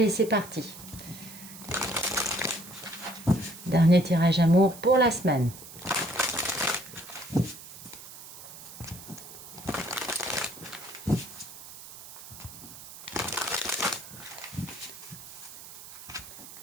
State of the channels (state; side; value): noise; right; hiss, 15 dB below the sound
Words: c'est parti. Dernier tirage amour pour la semaine.